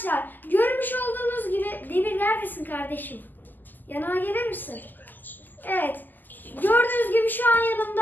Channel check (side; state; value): right; late; 0.087 ms